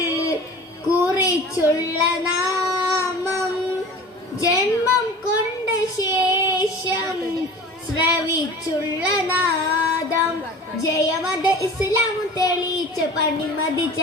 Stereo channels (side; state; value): both; normal; correlation 0.39